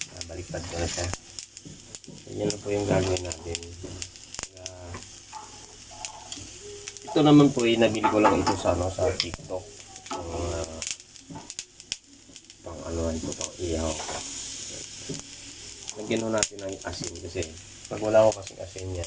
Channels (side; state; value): both; identical; correlation 1.00